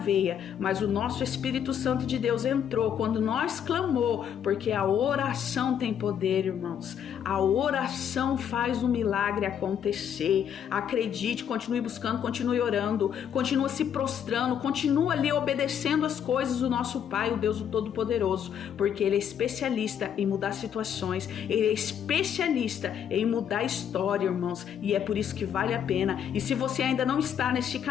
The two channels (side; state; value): right; quieter; 8.7 dB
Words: Mas o nosso Espírito Santo de Deus entrou quando nós clamou, porque a oração tem poder, irmãos. A oração faz o milagre acontecer. Acredite, continue buscando, continue orando, continue se prostrando, continue ali obedecendo as coisas do nosso Pai, o Deus Todo-Poderoso, porque Ele é especialista em mudar situações, Ele é especialista em mudar a história, irmãos, e é por isso que vale a pena. E se você ainda não está neste